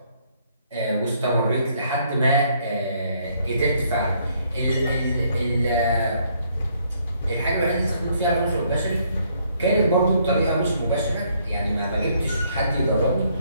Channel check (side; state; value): both; inverted; correlation -0.68